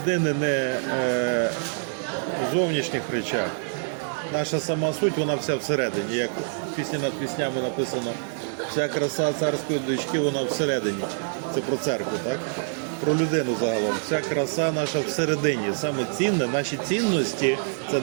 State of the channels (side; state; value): left; silent; digital silence